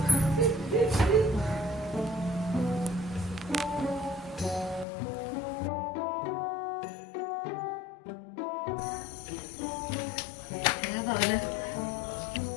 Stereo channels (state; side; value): drops out; right; at 4.9 s